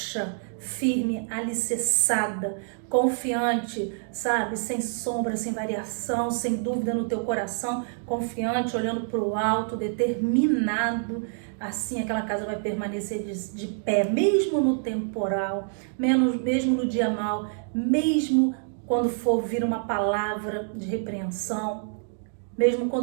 firme, alicerçada, confiante, sabe, sem sombra, sem variação, sem dúvida no teu coração, confiante, olhando para o alto, determinado, assim aquela casa vai permanecer de pé, mesmo no temporal, mesmo no dia mau, mesmo quando for vir uma palavra de repreensão, mesmo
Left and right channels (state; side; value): silent; left; digital silence